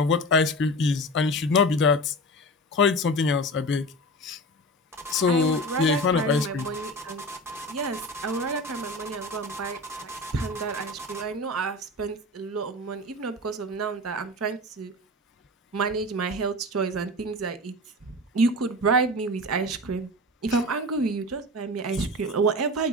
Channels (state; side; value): normal; both; correlation 0.31